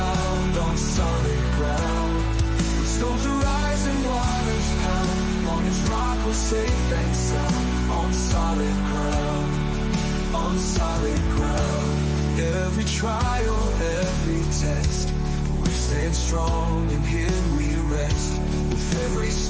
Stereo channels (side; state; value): both; identical; correlation 1.00